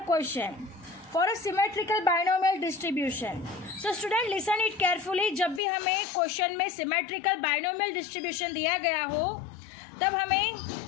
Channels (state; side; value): drops out; right; at 5.6 s